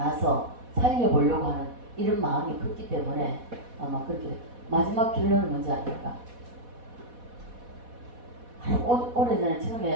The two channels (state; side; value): late; left; 4.1 ms